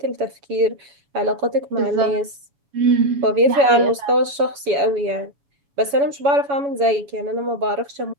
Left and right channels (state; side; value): late; left; 7.1 ms